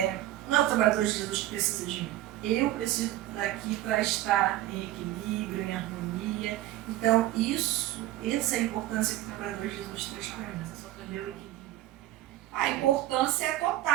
Não é o trabalhador de Jesus que precisa de mim. Eu preciso daqui para estar em equilíbrio, em harmonia. Então, essa é a importância que o trabalhador de Jesus traz para mim. Meu equilíbrio. A importância é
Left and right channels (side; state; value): left; quieter; 14.8 dB